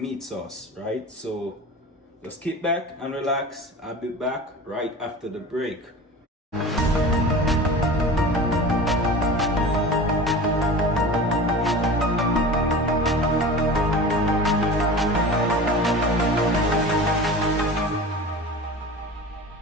meat sauce, right? So just kick back and relax. I'll be back right after the break.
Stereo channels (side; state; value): both; normal; correlation 0.35